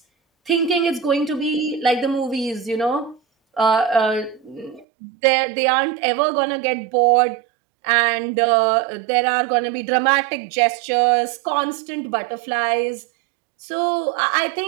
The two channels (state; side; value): drops out; left; at 4.9 s